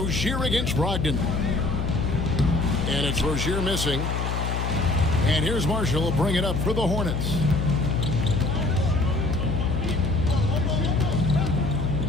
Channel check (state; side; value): noise; left; hum, 1 dB below the sound